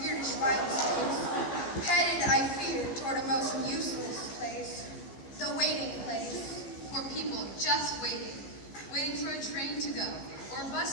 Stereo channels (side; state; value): right; late; 15 ms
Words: wild space, headed, I fear, toward a most useless place, the waiting place. For people just waiting for a train to go, or a